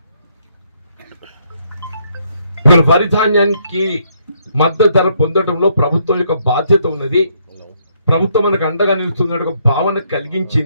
ఇవాళ వరి ధాన్యానికి మద్దతు ధర పొందడంలో ప్రభుత్వం యొక్క బాధ్యత ఉన్నది, ప్రభుత్వం మనకు అండగా నిలుస్తున్న ఒక భావన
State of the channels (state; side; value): inverted; both; correlation -0.71